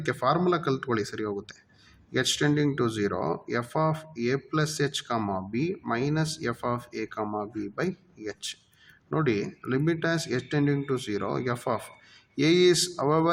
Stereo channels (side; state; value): both; identical; correlation 1.00